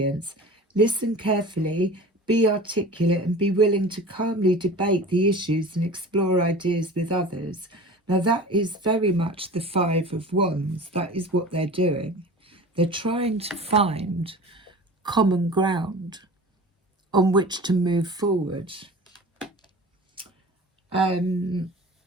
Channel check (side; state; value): both; normal; correlation 0.38